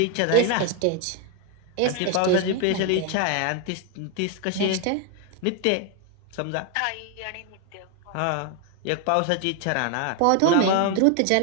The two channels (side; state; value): both; different; correlation 0.01